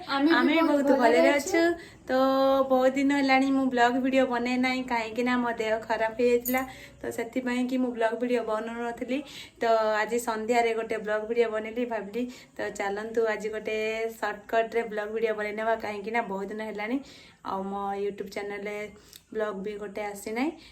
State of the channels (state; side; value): identical; both; correlation 1.00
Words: आमे भी बहुत भले अछु। तो बहुत दिन हलानी मु ब्लॉग वीडियो बने नाही काहे कि ना मो देह खराब हे जातला तो सेति पई कि मु ब्लॉग वीडियो बननु नथली। तो आज संध्या रे गोटे ब्लॉग वीडियो बनेली भाबली तो चलंतु आज गोटे शॉर्टकट रे ब्लॉग वीडियो बनेनेबा काहे कि ना बहुत दिन हलानी आ मो यूट्यूब चैनल रे ब्लॉग भी गोटे आसी ना।